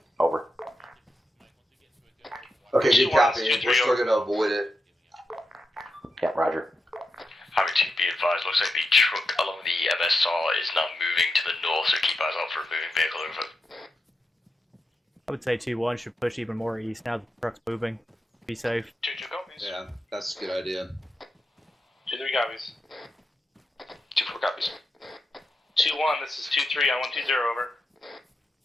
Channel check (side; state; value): both; normal; correlation 0.87